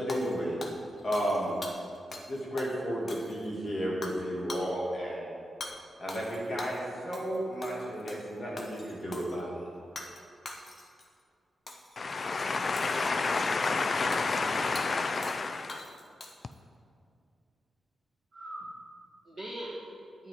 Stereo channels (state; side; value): normal; both; correlation 0.89